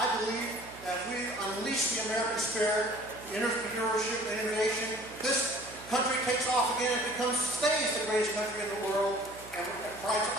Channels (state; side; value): noise; right; hum, 19 dB below the sound